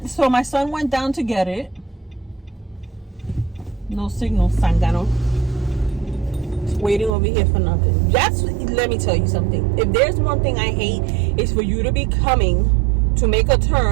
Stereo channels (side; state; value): left; drops out; at 7.1 s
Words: so my son went down to get it. No signal, Sangano. Waiting over here for nothing. Let me tell you something. If there's one thing I hate, it's for you to be coming to make a